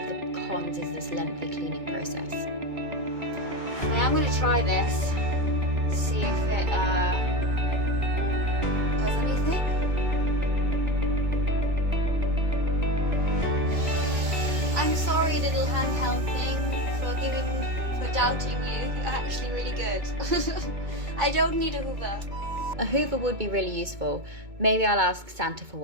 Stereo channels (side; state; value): left; late; 2.2 ms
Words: the cons is this lengthy cleaning process. Now I'm going to try this, see if it does anything. free little handheld thing for doubting you. You're actually really good. I don't need a Hoover. A Hoover would be really useful. Maybe I'll ask Santa for